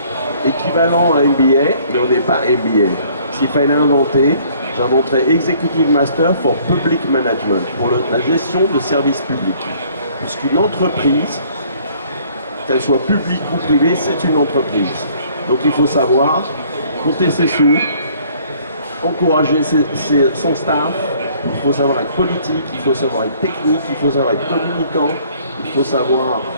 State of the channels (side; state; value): both; inverted; correlation -0.58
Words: équivalent à MBA, mais on n'est pas MBA. S'il fallait inventer, j'inventerais Executive Master for Public Management, pour la gestion de services publics. Puisqu'une entreprise, qu'elle soit publique ou privée, c'est une entreprise. Donc il faut savoir compter ses sous, encourager son staff, il faut savoir être politique, il faut savoir être technique, il faut savoir être communicant, il faut savoir